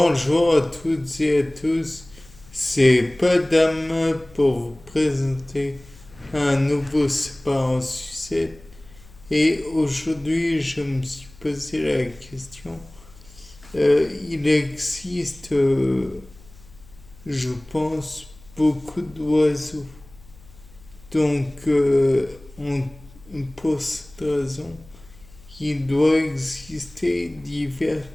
à toutes et à tous, c'est Padam pour vous présenter un nouveau Savoir en sucette. Et aujourd'hui, je me suis posé la question. Il existe, je pense, beaucoup d'oiseaux. Donc, pour cette raison, il doit exister divers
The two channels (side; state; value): left; noise; hum, 23 dB below the sound